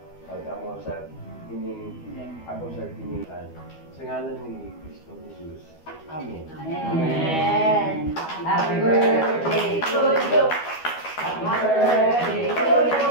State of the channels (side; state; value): right; late; 12 ms